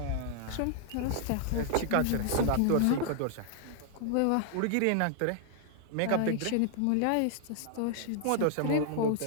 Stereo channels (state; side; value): different; both; correlation 0.00